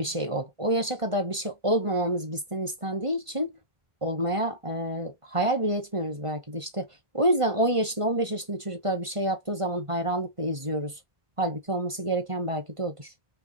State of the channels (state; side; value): late; left; 1.5 ms